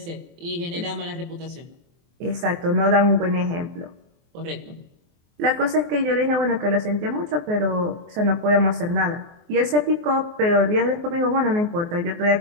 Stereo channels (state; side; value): late; left; 24 ms